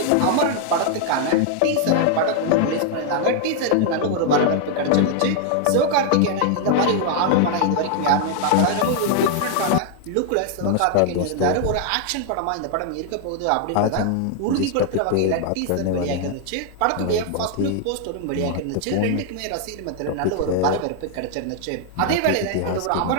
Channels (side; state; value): both; different; correlation 0.00